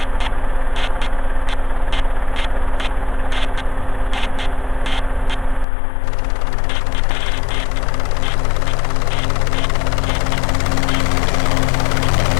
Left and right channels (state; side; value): drops out; right; at 5.7 s